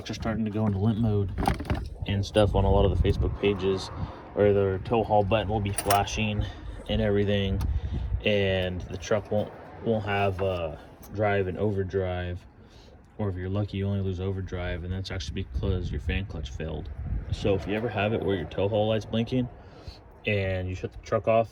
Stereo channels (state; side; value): identical; both; correlation 1.00